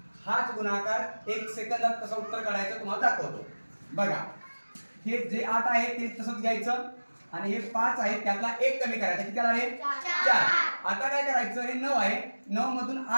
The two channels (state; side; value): inverted; both; correlation -1.00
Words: हाच गुणाकार 1 सेकंदात कसं उत्तर काढायचं तुम्हाला दाखवतो. बघा हे जे 8 आहे ते तसंच घ्यायचं आणि हे 5 आहे त्यातला 1 कमी करायचा. किती आला रे? 4. आता काय करायचं? हे 9 आहे 9 मधून